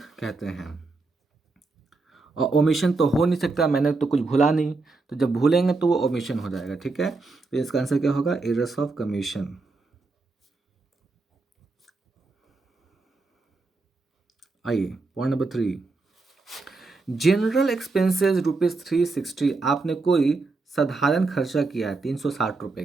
कहते हैं। और ओमिशन तो हो नहीं सकता, मैंने तो कुछ भूला नहीं, तो जब भूलेंगे तो वो ओमिशन हो जाएगा, ठीक है। तो इसका आंसर क्या होगा, एरर्स ऑफ कमीशन। आइए पॉइंट नंबर 3, जनरल एक्सपेंसेस ₹360। आपने कोई साधारण खर्चा किया है 360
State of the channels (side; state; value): left; quieter; 3.7 dB